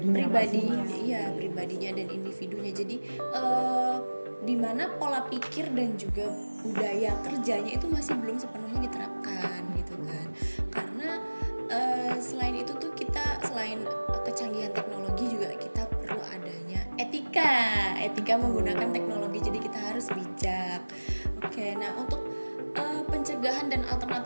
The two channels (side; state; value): both; inverted; correlation -1.00